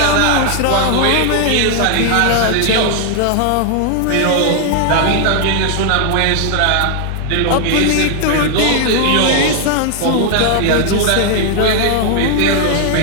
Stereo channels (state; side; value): different; both; correlation 0.00